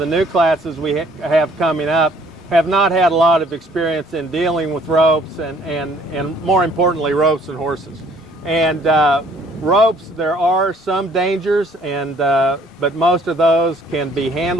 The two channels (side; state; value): both; normal; correlation 0.59